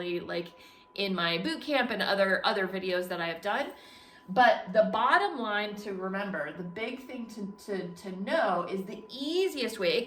like in my boot camp and other videos that I have done. But the bottom line to remember, the big thing to know is the easiest way,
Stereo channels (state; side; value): identical; both; correlation 1.00